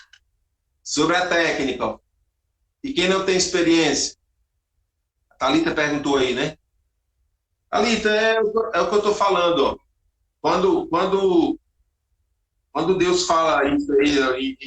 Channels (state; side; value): identical; both; correlation 1.00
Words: Sobre a técnica, e quem não tem experiência? A Thalita perguntou aí, né? Alita, é o que eu estou falando. Ó. Quando Deus fala isso aí,